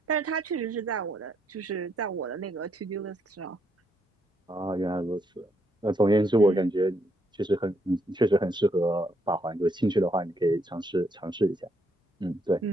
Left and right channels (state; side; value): normal; both; correlation 0.75